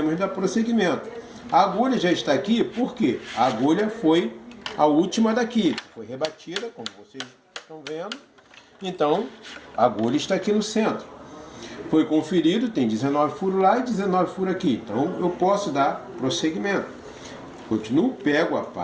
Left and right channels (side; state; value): both; identical; correlation 1.00